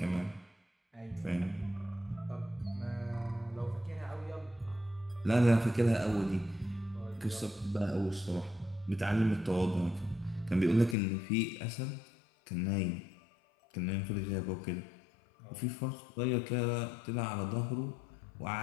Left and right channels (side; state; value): right; drops out; at 11.0 s